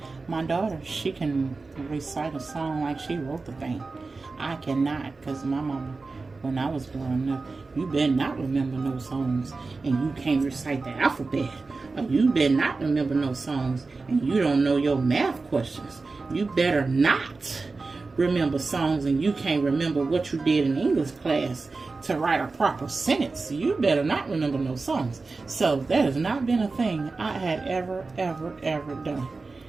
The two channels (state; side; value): quieter; left; 3.9 dB